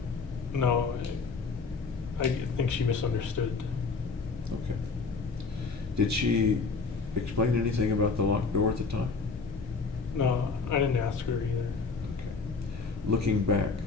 No, I think she misunderstood. Okay. Did she explain anything about the locked door at the time? No, I didn't ask her either. Okay. Looking back,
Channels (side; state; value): right; quieter; 4.5 dB